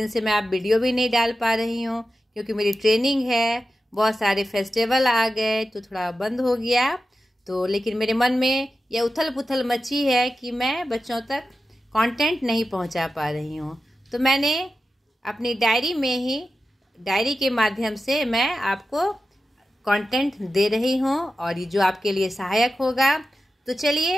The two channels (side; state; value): both; normal; correlation 0.92